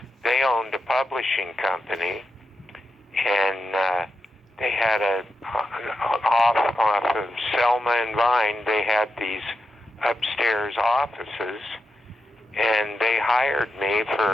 they owned a publishing company, and they had off of Selma and Vine, they had these upstairs offices, and they hired me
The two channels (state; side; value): normal; both; correlation 0.87